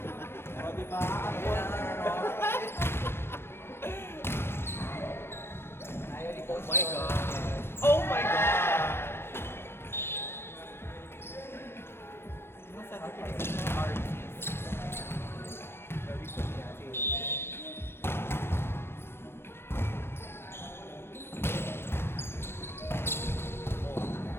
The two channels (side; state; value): right; late; 0.12 ms